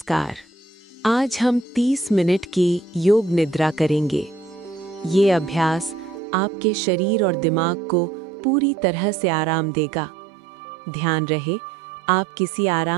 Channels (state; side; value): drops out; left; at 6.2 s